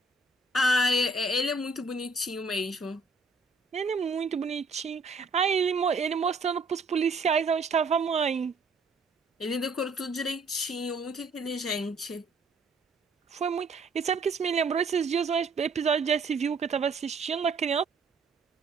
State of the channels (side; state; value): left; quieter; 3.3 dB